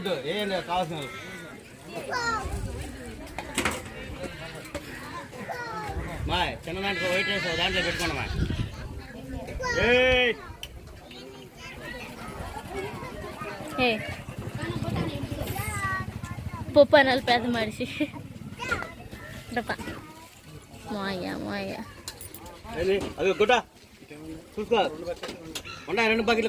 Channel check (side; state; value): both; identical; correlation 1.00